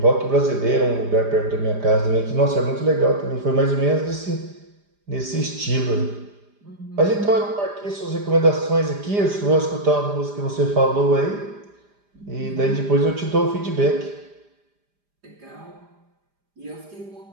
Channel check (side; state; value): left; late; 5.0 ms